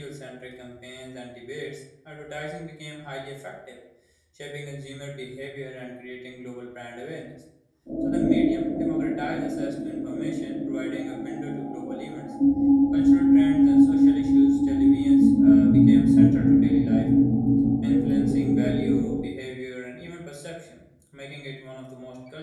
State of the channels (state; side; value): identical; both; correlation 1.00